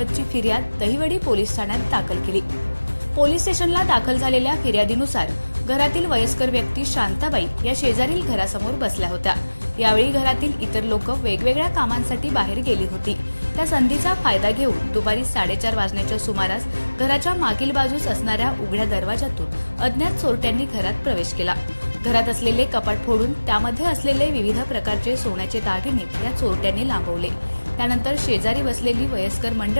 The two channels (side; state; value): both; inverted; correlation -1.00